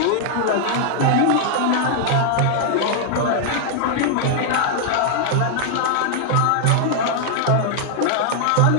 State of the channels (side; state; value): both; different; correlation 0.00